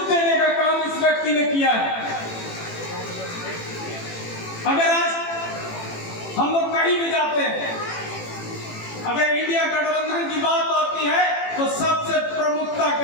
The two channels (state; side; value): late; right; 18 ms